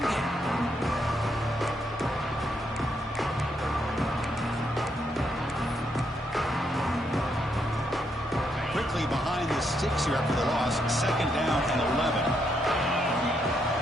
game. Quickly behind the sticks here after the loss. Second down and 11.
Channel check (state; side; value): normal; both; correlation 0.77